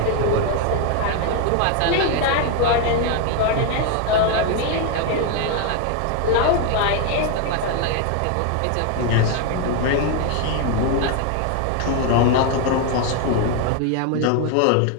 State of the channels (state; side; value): different; both; correlation 0.01